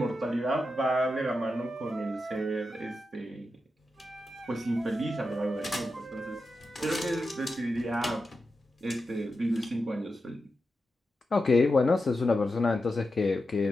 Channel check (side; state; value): both; normal; correlation 0.89